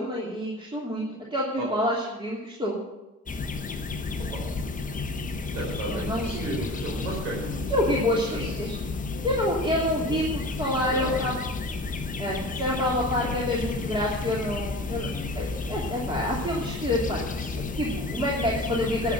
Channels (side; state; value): both; normal; correlation 0.37